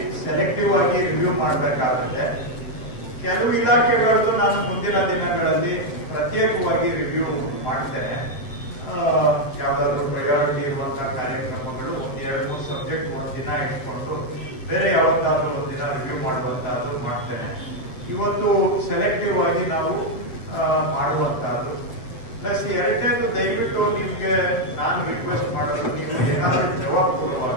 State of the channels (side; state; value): right; late; 7.8 ms